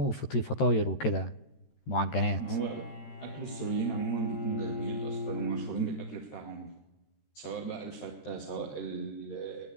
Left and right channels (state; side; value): late; right; 13 ms